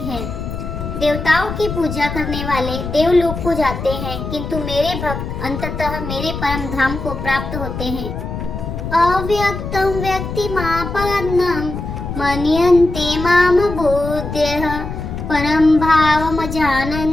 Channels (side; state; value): left; noise; rumble, 6 dB below the sound